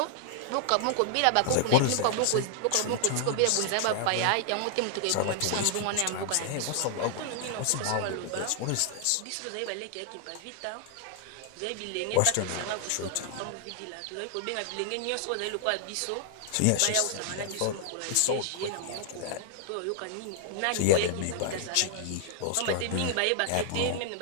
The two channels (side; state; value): both; different; correlation 0.00